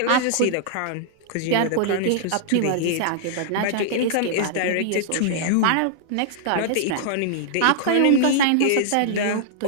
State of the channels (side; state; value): both; different; correlation -0.01